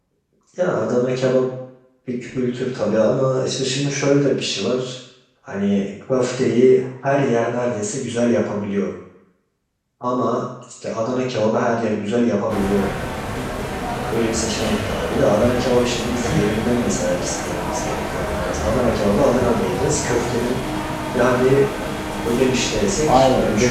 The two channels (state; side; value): identical; both; correlation 1.00